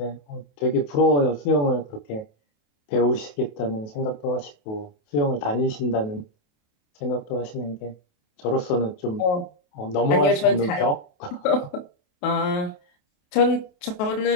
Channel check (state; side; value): late; right; 28 ms